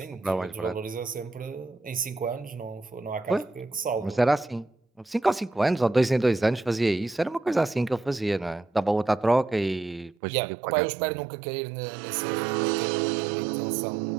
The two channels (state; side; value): drops out; left; at 10.2 s